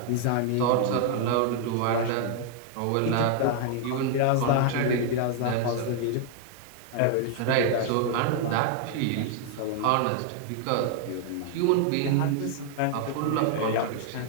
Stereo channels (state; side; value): different; both; correlation 0.00